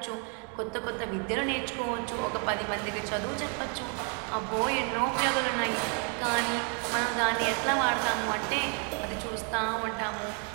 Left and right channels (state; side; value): quieter; left; 39.3 dB